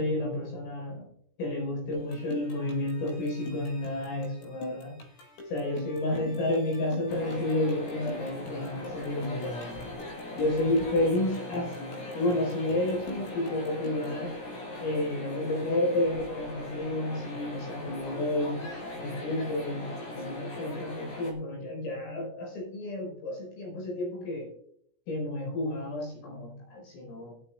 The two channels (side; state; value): right; late; 17 ms